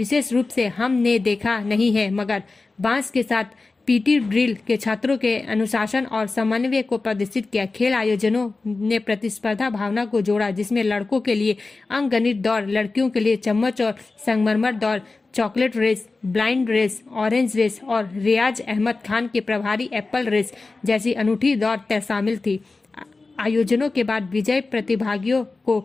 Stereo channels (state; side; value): quieter; right; 3.7 dB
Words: रूप से हमने देखा नहीं है मगर बांस के साथ पीटी ड्रिल के छात्रों के अनुशासन और समन्वय को प्रदर्शित किया। खेल आयोजनों ने प्रतिस्पर्धा भावना को जोड़ा, जिसमें लड़कों के लिए अंकगणित दौड़, लड़कियों के लिए चम्मच और संगमरमर दौड़, chocolate race, blind race, orange race और रियाज अहमद खान के प्रभारी एप्पल रेस जैसी अनूठी दौड़ शामिल थी। आयोजनों के बाद विजय प्रतिभागियों